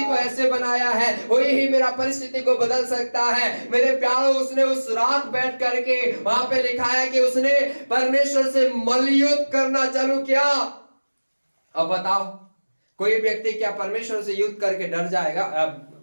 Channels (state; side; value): inverted; both; correlation -1.00